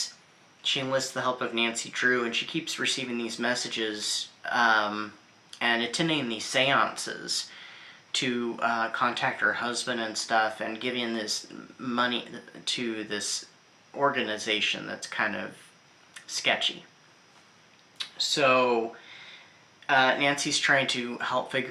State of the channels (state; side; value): identical; both; correlation 1.00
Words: She enlists the help of Nancy Drew, and she keeps receiving these messages and attending these seances to contact her husband and stuff, and giving this money to this organization that's kind of sketchy. So Nancy's trying to help